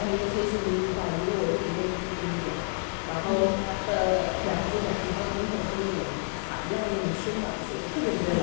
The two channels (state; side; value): silent; right; 59 dB below the other